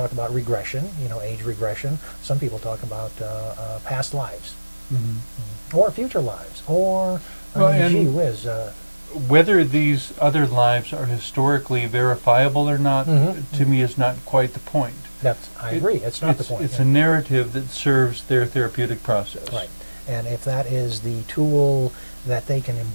about regression, you know, age regression. Some people talk about past lives or future lives, or Well, I mean, and- gee whiz. Whether these other lives are historically verifiable or not, to me is not quite the point. I agree. It's not the point. It's yeah. a narrative that serves their therapeutic process. Right. And if that is the tool that they can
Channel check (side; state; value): both; inverted; correlation -1.00